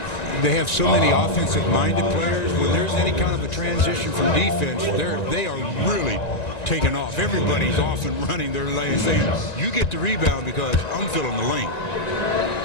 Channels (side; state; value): right; late; 1.9 ms